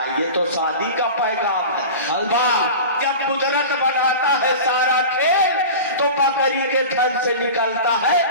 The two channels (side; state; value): both; inverted; correlation -0.33